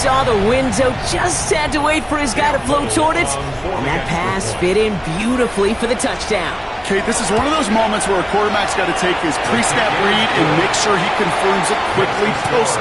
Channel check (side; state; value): both; identical; correlation 1.00